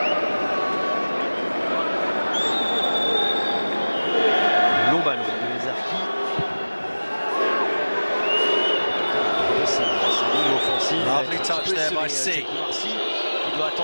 Touch there by C. Il doit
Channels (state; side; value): inverted; both; correlation -1.00